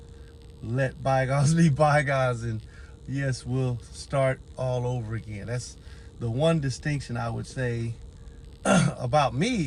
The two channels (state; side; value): identical; both; correlation 1.00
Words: let bygones be bygones, and yes, we'll start all over again. That's the one distinction I would say about